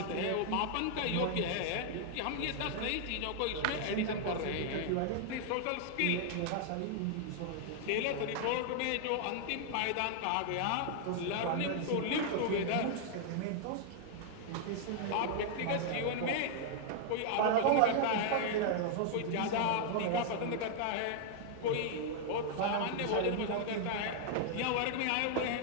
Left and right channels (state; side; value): different; both; correlation 0.00